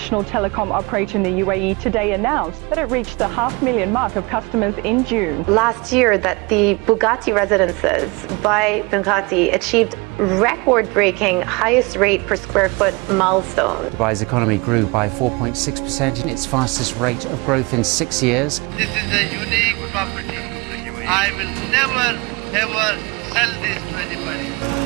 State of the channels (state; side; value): quieter; left; 26.5 dB